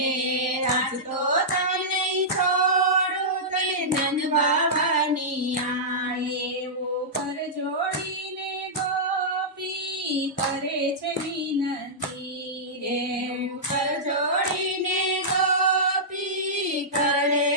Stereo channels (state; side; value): normal; both; correlation -0.13